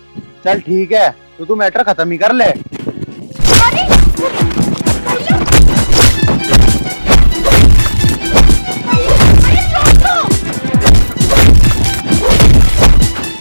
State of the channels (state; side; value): inverted; both; correlation -1.00